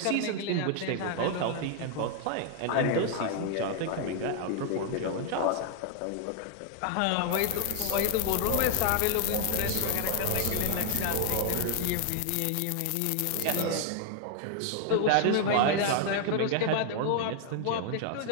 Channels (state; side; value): different; both; correlation 0.00